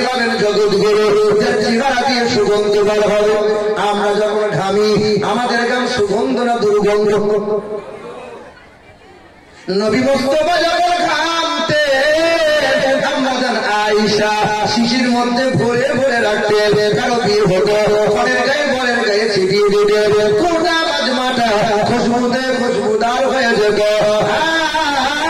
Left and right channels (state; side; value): identical; both; correlation 1.00